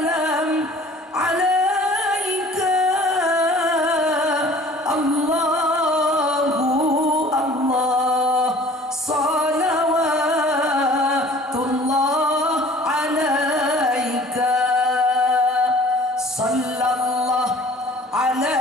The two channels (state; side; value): normal; both; correlation 0.49